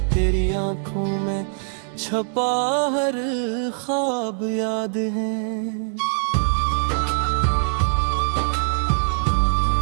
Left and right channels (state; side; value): silent; left; digital silence